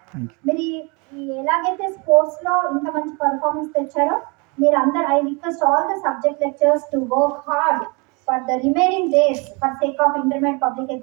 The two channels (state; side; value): quieter; left; 30.3 dB